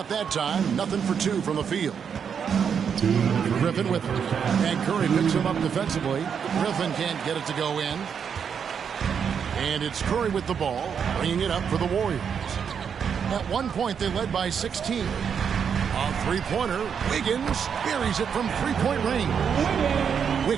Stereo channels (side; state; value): left; quieter; 7.2 dB